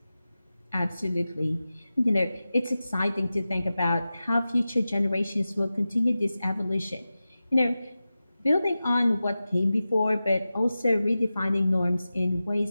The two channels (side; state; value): both; inverted; correlation -0.95